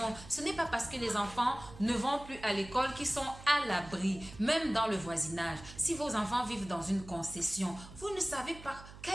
Ce n'est pas parce que les enfants ne vont plus à l'école qu'ils sont à l'abri, même dans le voisinage. Si vos enfants vivent dans une concession, vous ne savez pas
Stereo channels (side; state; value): right; noise; hum, 16 dB below the sound